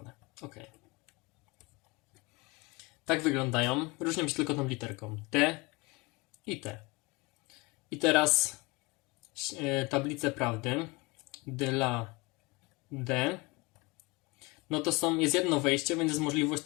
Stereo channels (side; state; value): right; quieter; 25.0 dB